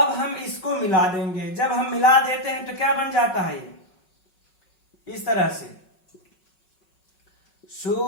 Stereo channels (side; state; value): right; late; 5.4 ms